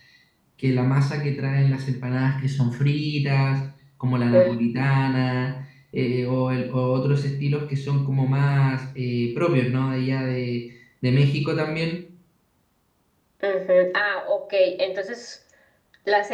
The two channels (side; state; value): both; identical; correlation 1.00